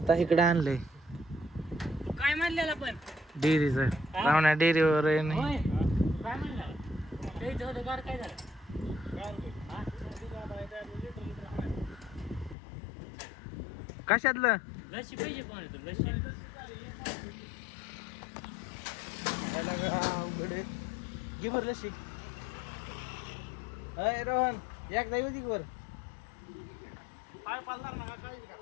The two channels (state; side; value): drops out; right; at 12.6 s